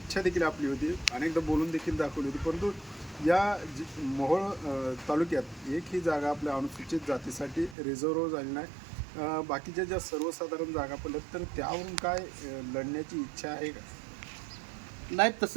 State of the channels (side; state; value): left; drops out; at 7.8 s